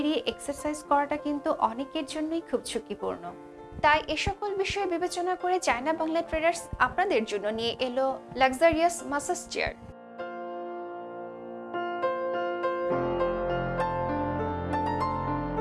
এক্সারসাইজ করাটা কিন্তু অনেকের জন্যই খুব ঝুঁকিপূর্ণ। তাই এ সকল বিষয় বিবেচনা করে চায়না বাংলা ট্রেডার্স আপনাদের জন্য নিয়ে এলো luxurious massage chair.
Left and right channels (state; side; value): identical; both; correlation 1.00